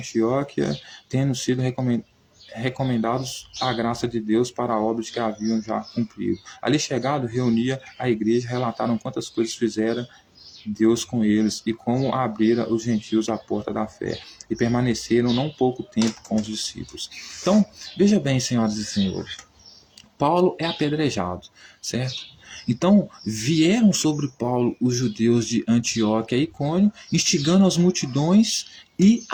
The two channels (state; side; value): identical; both; correlation 1.00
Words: tendo sido recomendados à graça de Deus para obras que haviam já cumprido. Ali chegado, reunia a igreja, relataram quantas coisas fizeram Deus com eles e como abrira os gentios a porta da fé, e permaneceram não pouco tempo com os discípulos. Então, veja bem, senhoras e senhores, Paulo é apedrejado, certo? Então, vieram sobre Paulo os judeus de Antioquia e Icônio, instigando as multidões e